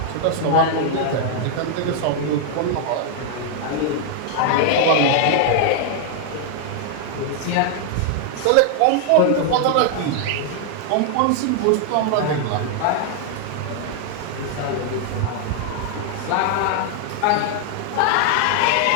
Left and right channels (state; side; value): different; both; correlation 0.00